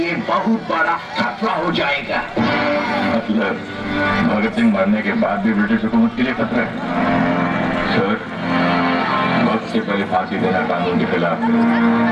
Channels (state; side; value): identical; both; correlation 1.00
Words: बहुत बड़ा खतरा हो जाएगा। मतलब भगत सिंह मरने के बाद भी ब्रिटिश हुकूमत के लिए खतरा है? सर, वक्त से पहले फांसी देना कानून के खिलाफ है।